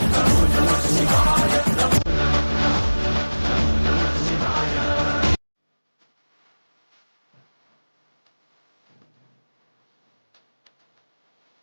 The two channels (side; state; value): both; inverted; correlation -1.00